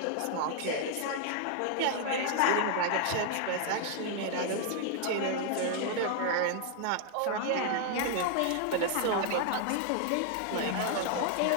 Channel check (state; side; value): different; both; correlation 0.00